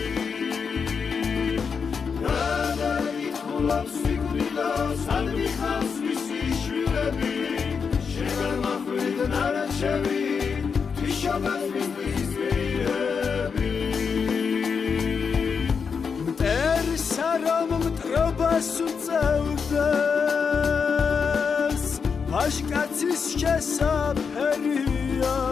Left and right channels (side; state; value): right; quieter; 5.9 dB